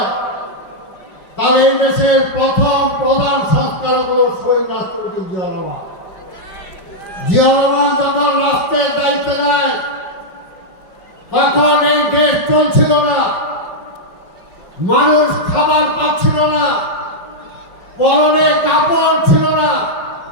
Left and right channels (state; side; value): late; right; 5.4 ms